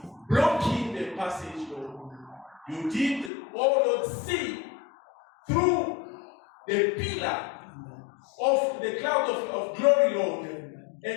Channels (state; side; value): drops out; right; at 3.3 s